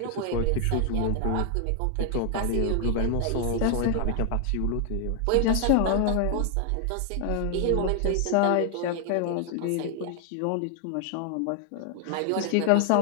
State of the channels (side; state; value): both; different; correlation 0.00